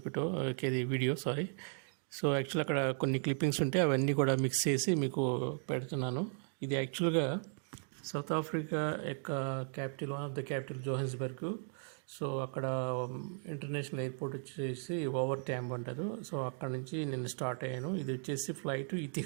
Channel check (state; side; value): silent; left; 54 dB below the other